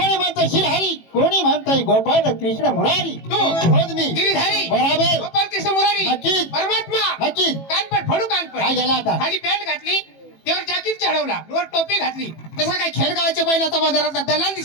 म्हणतं शिरहरी, कोणी म्हणतंय गोपाळ कृष्ण मुरारी. तू मी गिरीधारी बरोबर. गोपाळ कृष्ण मुरारी नक्कीच. परमात्मा नक्कीच. कानपट फोडू कानपट. काय झालं आता? खाली पॅन्ट घातली, त्यावर जॅकेट चढवला, वर टोपी घातली. तसा काय खेडगावाच्या बैलाचा बाजारातला दलाल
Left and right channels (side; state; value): right; late; 18 ms